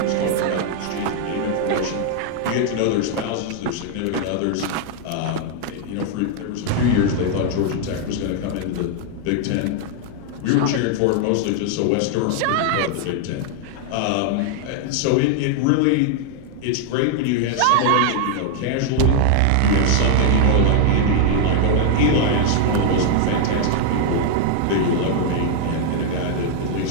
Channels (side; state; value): both; different; correlation 0.00